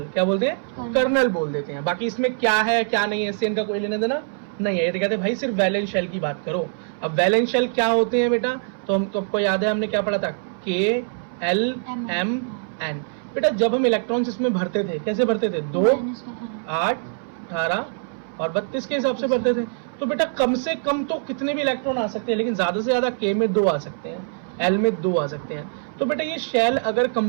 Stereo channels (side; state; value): left; silent; 61 dB below the other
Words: क्या बोलते हैं? कर्नल बोल देते हैं। बाकी इसमें क्या है क्या नहीं है इससे इनका कोई लेना देना नहीं है। ये तो कहते हैं भाई सिर्फ वैलेंस शेल की बात करो। अब वैलेंस शेल क्या होते हैं बेटा? तो आपको याद है हमने क्या पढ़ा था? KLMN। बेटा जब हम इलेक्ट्रॉन्स इसमें भरते थे, कैसे भरते थे? 2, 8, 18 और 32 के हिसाब से भरते थे। तो बेटा कम से कम तो कितने भी इलेक्ट्रॉन आ सकते हैं, लेकिन ज्यादा से ज्यादा K में 2 आ सकते हैं, L में 2 आ सकते हैं। तो बेटा ये शेल अगर